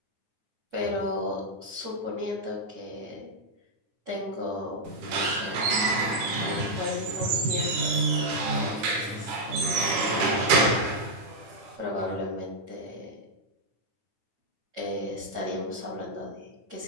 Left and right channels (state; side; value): late; left; 10 ms